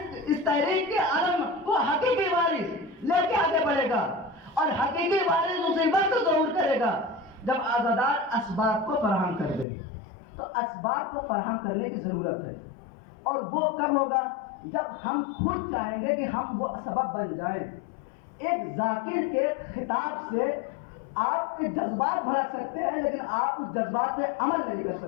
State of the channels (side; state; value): right; drops out; at 9.7 s